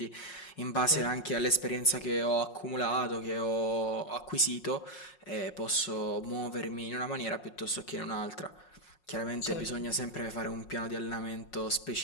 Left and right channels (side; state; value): right; late; 5.5 ms